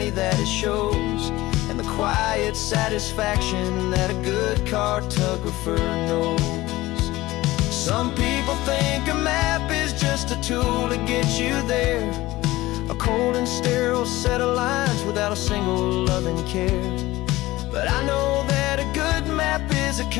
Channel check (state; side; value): quieter; right; 18.2 dB